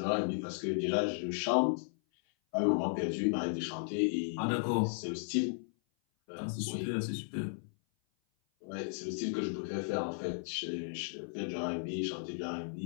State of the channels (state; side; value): silent; right; 54 dB below the other